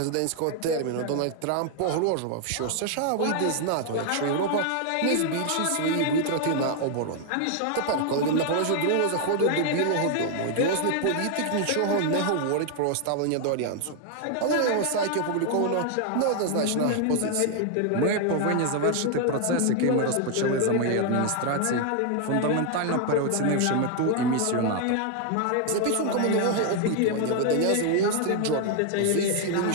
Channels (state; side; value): different; both; correlation 0.00